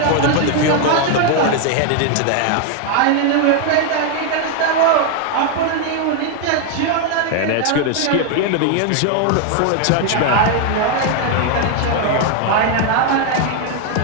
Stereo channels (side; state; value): both; different; correlation 0.01